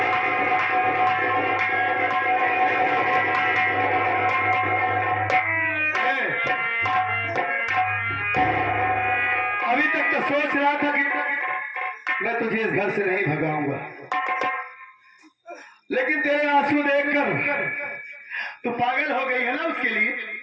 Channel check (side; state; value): both; identical; correlation 1.00